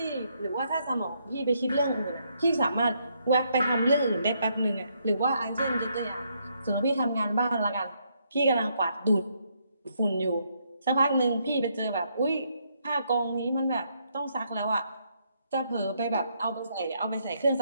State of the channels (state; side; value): inverted; both; correlation -0.74